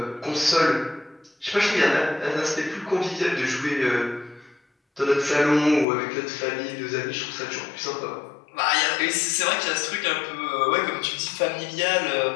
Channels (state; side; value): drops out; right; at 5.9 s